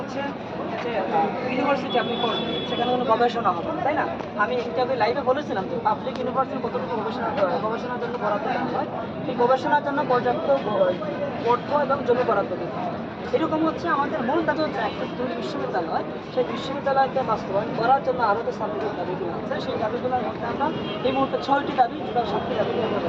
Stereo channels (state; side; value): identical; both; correlation 1.00